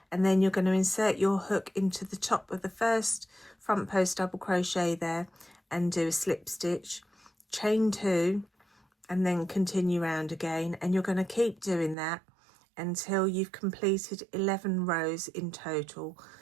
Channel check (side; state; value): left; drops out; at 12.0 s